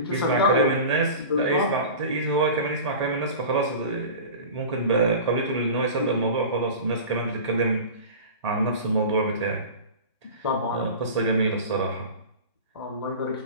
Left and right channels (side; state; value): both; inverted; correlation -0.34